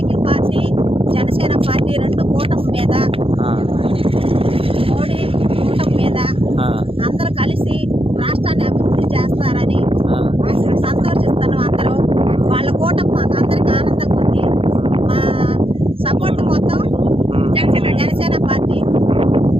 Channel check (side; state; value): left; late; 0.27 ms